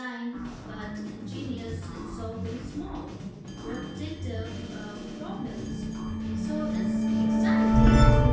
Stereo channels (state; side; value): identical; both; correlation 1.00